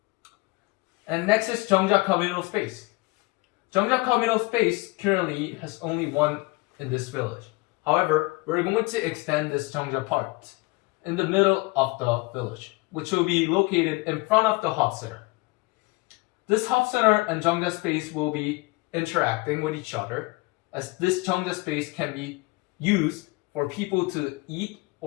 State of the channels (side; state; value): right; quieter; 24.3 dB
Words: And next is Jeongja Communal Space. Jeongja Communal Space currently has only one in this village. However, we're going to extend this Jeongja part in the middle of the village, which will be located in front of the hub center. This hub center and Jeongja space will be interacting with each other, as this Jeongja space can be used for people to eat